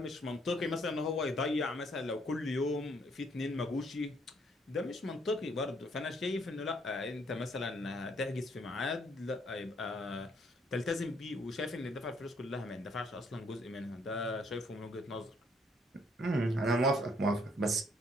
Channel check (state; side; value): normal; both; correlation 0.68